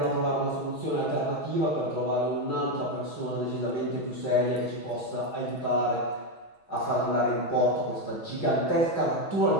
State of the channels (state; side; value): late; right; 6.2 ms